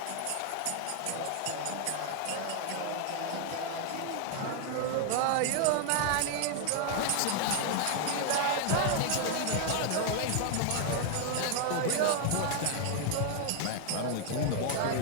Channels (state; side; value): different; both; correlation 0.00